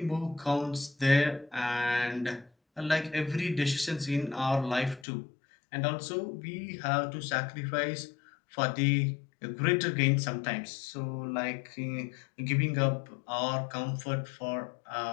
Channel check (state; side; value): drops out; right; at 5.1 s